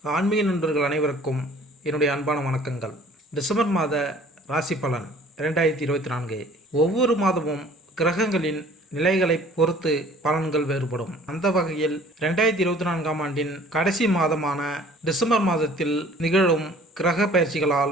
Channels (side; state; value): both; normal; correlation 0.52